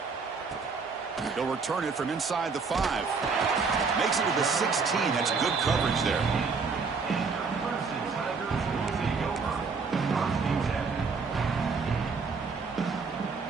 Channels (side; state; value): left; quieter; 4.9 dB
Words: They'll return it from inside the 5. Makes it to the 16. That's good coverage there.